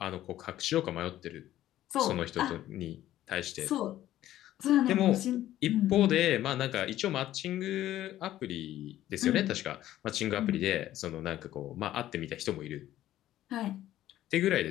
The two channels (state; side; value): quieter; right; 13.4 dB